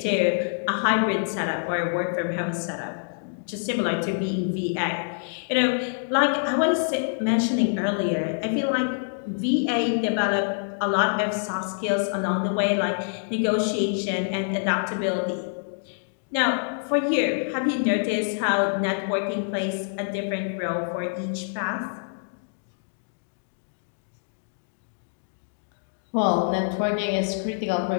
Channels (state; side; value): silent; right; digital silence